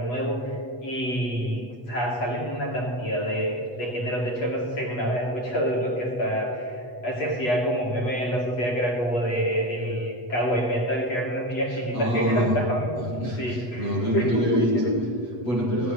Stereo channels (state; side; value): late; right; 8.2 ms